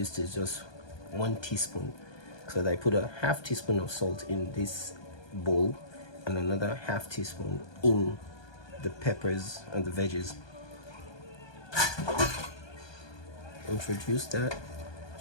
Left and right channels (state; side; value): late; right; 1.2 ms